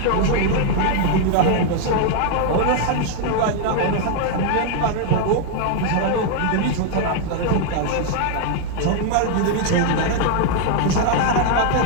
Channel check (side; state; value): both; different; correlation 0.00